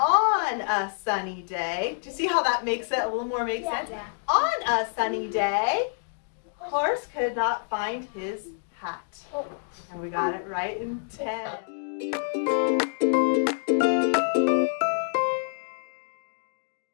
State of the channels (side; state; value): right; silent; digital silence